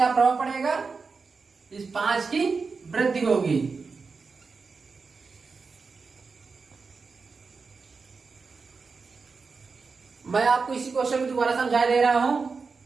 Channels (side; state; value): left; quieter; 4.7 dB